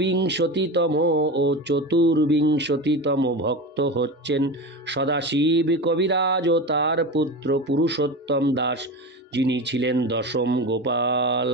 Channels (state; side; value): normal; both; correlation 0.25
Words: ও চতুর্বিংশতিতম ভক্ত হচ্ছেন সদাশিব কবিরাজ ও তার পুত্র পুরুষোত্তম দাস, যিনি ছিলেন দশম গোপাল।